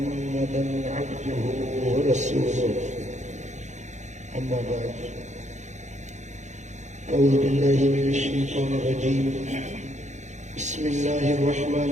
عبده ورسوله أما بعد أعوذ بالله من الشيطان الرجيم بسم الله الرحمن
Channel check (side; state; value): left; late; 0.34 ms